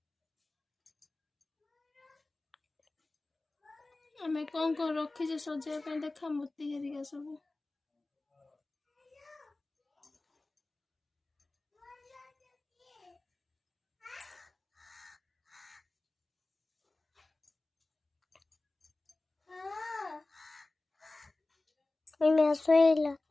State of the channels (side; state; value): right; quieter; 3.0 dB